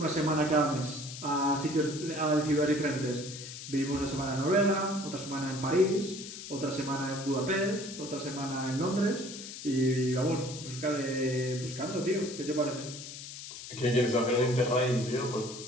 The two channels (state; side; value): noise; left; hiss, 11 dB below the sound